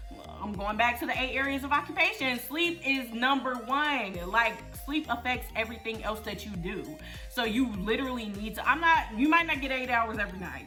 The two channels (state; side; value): identical; both; correlation 1.00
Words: I'm going back to the 8 areas of occupation. Sleep is number 1. Like, sleep affects everything else that you do. So you literally need to, you might not get 8 hours every night.